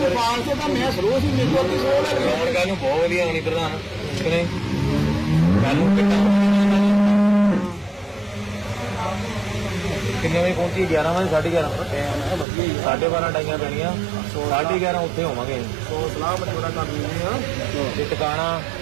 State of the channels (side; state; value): left; drops out; at 12.5 s